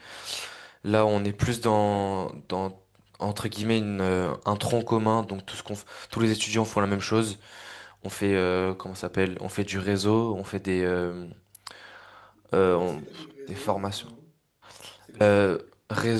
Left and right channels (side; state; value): both; identical; correlation 1.00